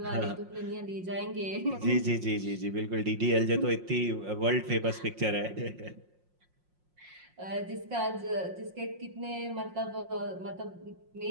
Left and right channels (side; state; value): left; late; 5.6 ms